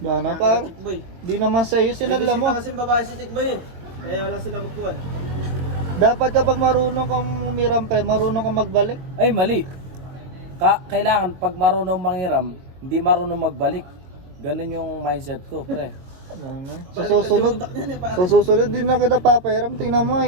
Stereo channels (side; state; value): left; late; 22 ms